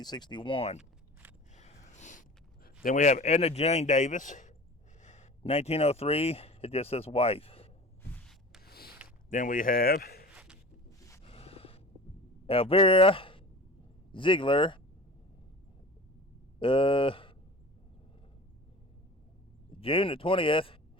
Then we have Edna Jane Davis, 1903, it just says wife. Then we have Elvira Ziegler, June the 20th,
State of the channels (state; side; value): normal; both; correlation 0.38